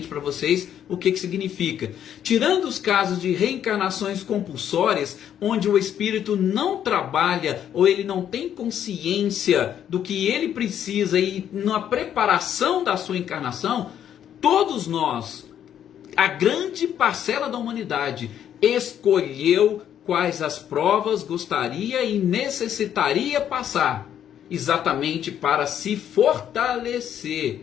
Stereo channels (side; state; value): right; quieter; 9.9 dB